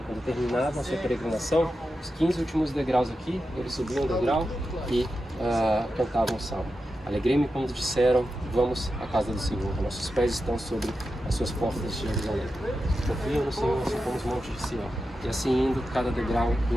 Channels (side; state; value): both; normal; correlation 0.90